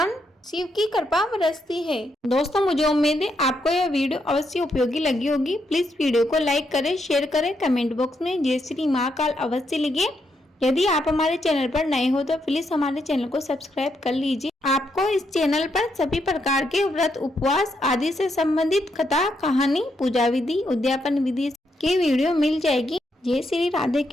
शिव की कृपा बरसती है। दोस्तों, मुझे उम्मीद है आपको यह वीडियो अवश्य उपयोगी लगी होगी। प्लीज वीडियो को लाइक करें, शेयर करें, कमेंट बॉक्स में जय श्री महाकाल अवश्य लिखिए। यदि आप हमारे चैनल पर नए हो तो प्लीज हमारे चैनल को सब्सक्राइब कर लीजिए। आपको इस चैनल पर सभी प्रकार के व्रत, उपवास आदि से संबंधित कथा, कहानी, पूजा विधि, उद्यापन विधि की वीडियो मिल जाएगी। जय श्री राधे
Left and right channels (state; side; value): normal; both; correlation 0.79